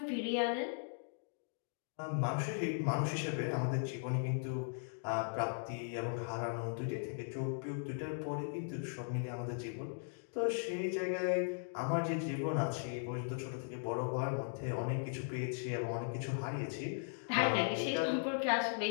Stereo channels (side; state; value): right; silent; digital silence